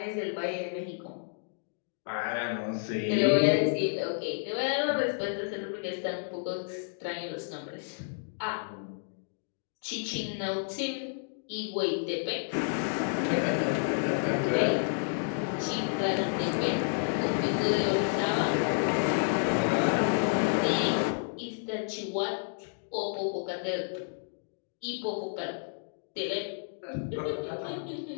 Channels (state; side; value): silent; right; digital silence